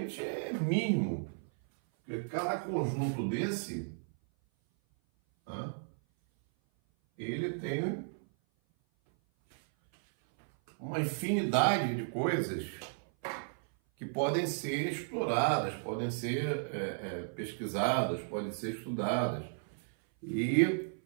é mínimo. Porque cada conjunto desse, tá? Ele tem uma infinidade de coisas que podem ser exploradas, podem ser pesquisadas, podem ser estudadas. E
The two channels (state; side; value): silent; left; 55 dB below the other